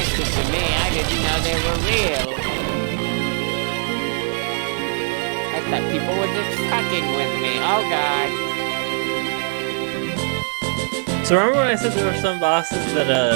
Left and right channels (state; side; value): silent; left; 65 dB below the other